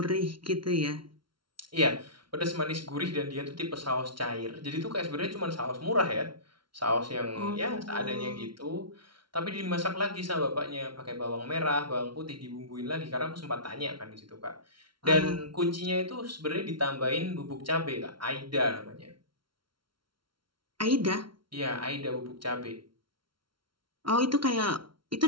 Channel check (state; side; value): late; left; 0.73 ms